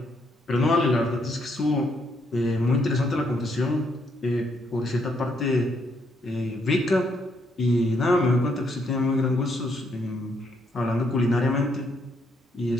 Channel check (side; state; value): both; normal; correlation 0.74